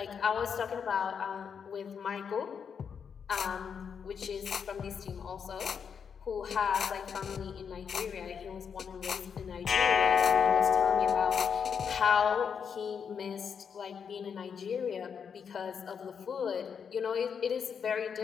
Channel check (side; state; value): right; quieter; 6.9 dB